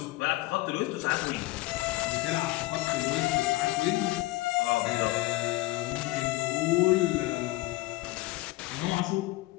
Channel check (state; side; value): quieter; right; 19.3 dB